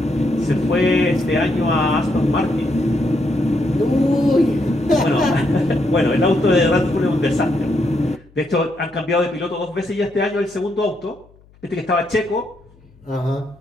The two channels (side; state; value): left; noise; hum, 28 dB below the sound